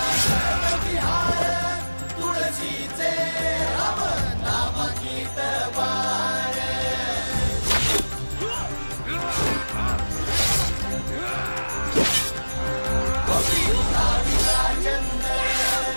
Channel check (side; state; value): both; inverted; correlation -1.00